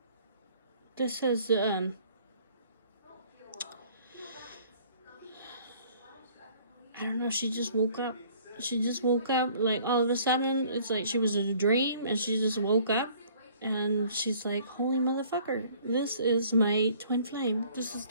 This says, I don't know, she just woke up. She just woke up, like, all of a sudden, it's like she was in a dream, and she just woke up, and she's like, holy motherfucker, this is my twin flame. This is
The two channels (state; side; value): inverted; both; correlation -0.56